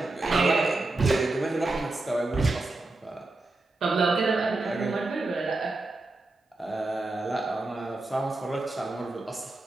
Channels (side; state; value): left; quieter; 3.0 dB